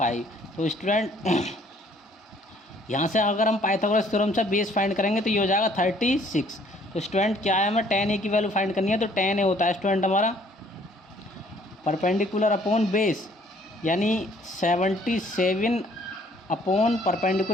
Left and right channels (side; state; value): both; normal; correlation 0.60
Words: तो स्टूडेंट यहाँ से अगर हम पाइथागोरस थ्योरम से बेस फाइंड करेंगे तो ये हो जाएगा 36। तो स्टूडेंट क्या है, हमें tan a की वैल्यू फाइंड करनी है, तो tan a होता है स्टूडेंट हमारा परपेंडिकुलर अपॉन बेस, यानी 77 अपॉन